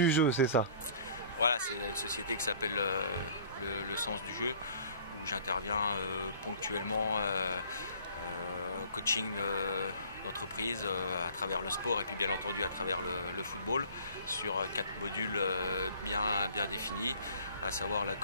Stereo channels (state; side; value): inverted; both; correlation -0.51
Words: jeu, c'est ça? Voilà, c'est une société qui s'appelle le Sens du jeu, où j'interviens ponctuellement coaching d'entreprise à travers le sport et puis bien entendu à travers le football sur 4 modules bien définis, à savoir la